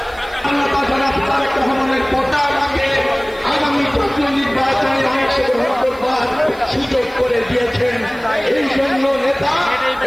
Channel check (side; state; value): right; noise; hiss, 26 dB below the sound